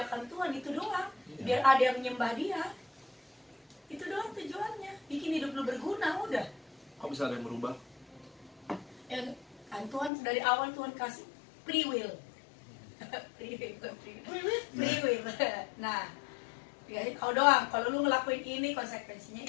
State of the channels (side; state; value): right; drops out; at 10.1 s